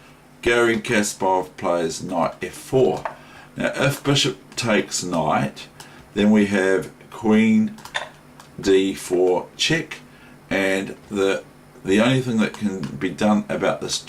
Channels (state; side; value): identical; both; correlation 1.00